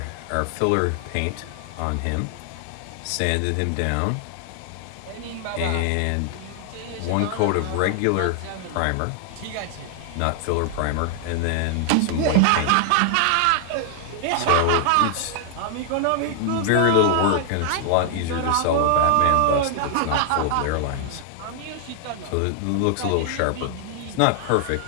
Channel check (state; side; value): different; both; correlation 0.00